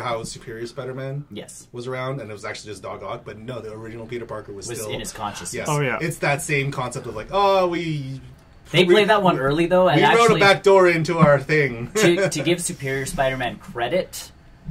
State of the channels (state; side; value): identical; both; correlation 1.00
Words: Superior Spider-Man Yes. was around and it was actually just Doc Ock, but no, the original Peter Parker was still in his consciousness. Yes. Oh, yeah. It's that same concept of like, They played that one early though, and we wrote actually a back door into our thing. to give Superior Spider-Man credit,